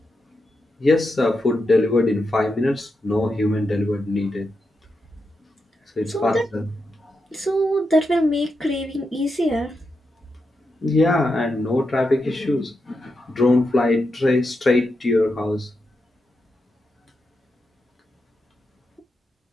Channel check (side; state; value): both; normal; correlation 0.86